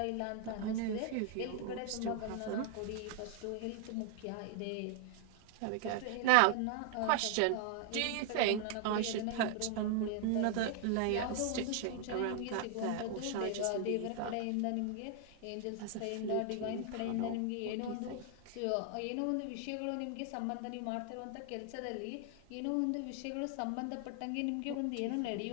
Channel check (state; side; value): different; both; correlation 0.00